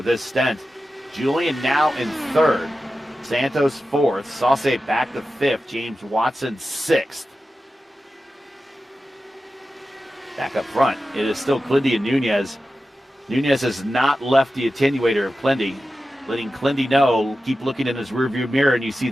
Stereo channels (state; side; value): normal; both; correlation 0.93